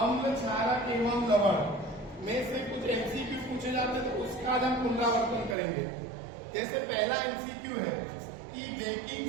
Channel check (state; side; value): drops out; left; at 5.6 s